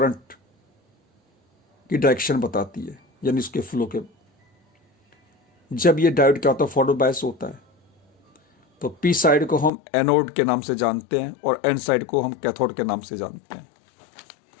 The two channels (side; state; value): right; drops out; at 9.7 s